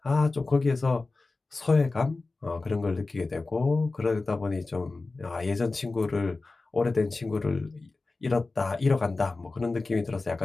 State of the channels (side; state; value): right; quieter; 3.5 dB